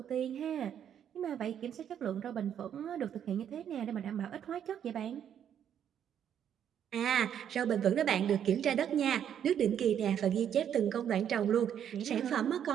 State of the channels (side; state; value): left; quieter; 9.2 dB